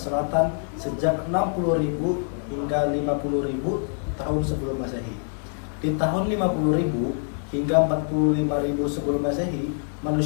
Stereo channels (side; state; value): right; silent; 62 dB below the other